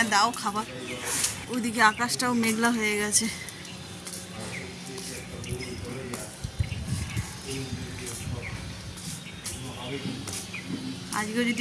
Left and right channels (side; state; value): both; identical; correlation 1.00